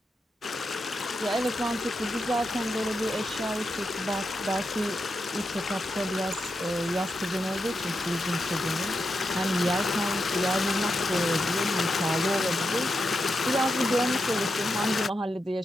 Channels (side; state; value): both; normal; correlation 0.86